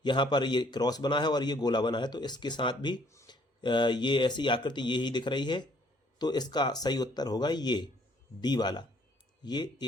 यहाँ पर ये क्रॉस बना है और ये गोला बना है, तो इसके साथ भी ये ऐसी आकृति ये ही दिख रही है। तो इसका सही उत्तर होगा ये डी वाला। ये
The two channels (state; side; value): normal; both; correlation 0.62